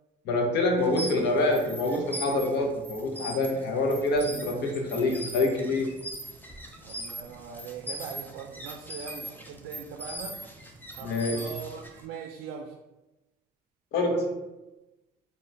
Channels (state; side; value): normal; both; correlation 0.30